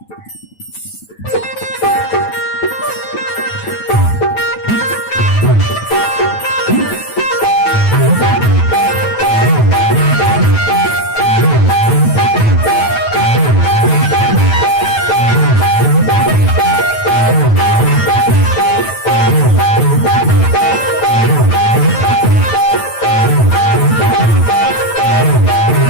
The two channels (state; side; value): late; right; 9.1 ms